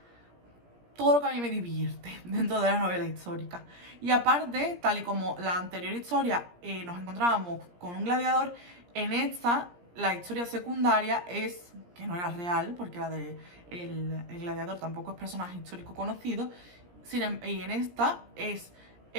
todo lo que a mí me divierte dentro de la novela histórica. Y aparte, tal y como la anterior historia nos encontrábamos con un gladiador, en esta la historia secundaria es, que no era real, porque la de el gladiador tampoco es personaje histórico conocido, y en esta es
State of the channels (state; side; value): late; left; 17 ms